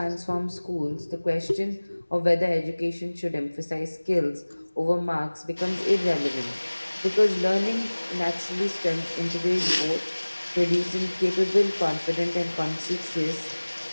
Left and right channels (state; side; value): inverted; both; correlation -1.00